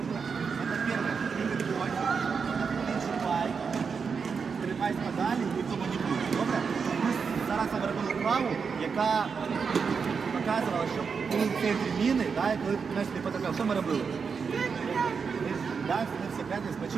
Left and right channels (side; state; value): left; quieter; 5.7 dB